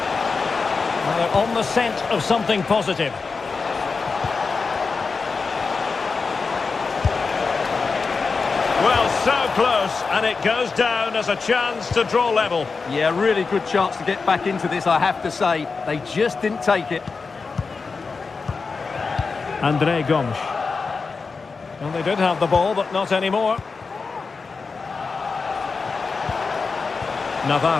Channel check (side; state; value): right; quieter; 4.6 dB